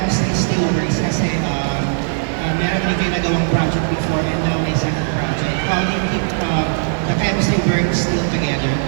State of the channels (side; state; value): left; silent; digital silence